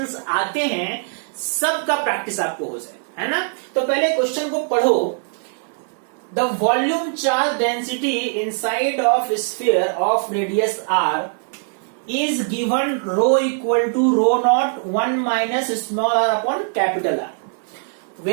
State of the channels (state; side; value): silent; left; 64 dB below the other